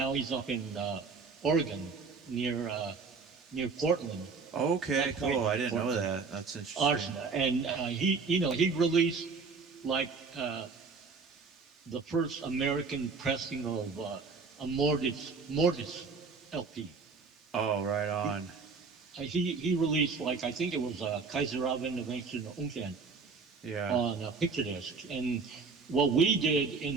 Oregon near Portland. Okay, cool. I didn't know that. That's interesting. Archon, and he released like the first American pressing of a Mortis LP. Oh, right on. He released, like, I think it was Kaiser auf Innovation Unken on a picture disc. And what we did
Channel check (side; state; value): left; quieter; 4.7 dB